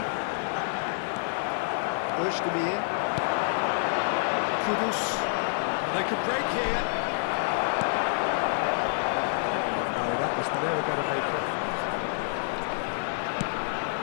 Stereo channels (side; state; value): right; silent; digital silence